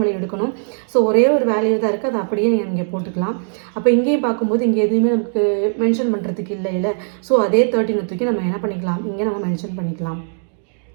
வேல்யூ எடுக்கணும். ஸோ ஒரே ஒரு வேல்யூ தான் இருக்குது, அதை அப்படியே நீங்கள் இங்கே போட்டுக்கலாம். அப்போ இங்கேயும் பார்க்கும்போது இங்கே எதுவுமே நமக்கு மென்ஷன் பண்ணுறதுக்கு இல்லை. ஸோ அதே 13 தூக்கி நம்ம என்ன பண்ணிக்கலாம், இங்கே நம்ம மென்ஷன் பண்ணிக்கலாம்.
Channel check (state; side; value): silent; left; digital silence